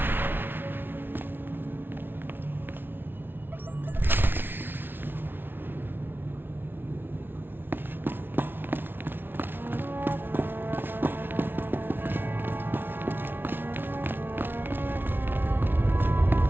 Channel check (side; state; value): left; late; 0.10 ms